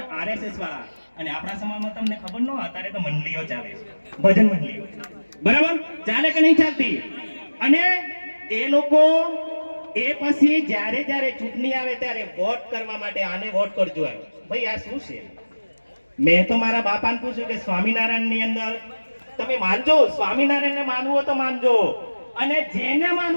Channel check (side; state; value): both; inverted; correlation -1.00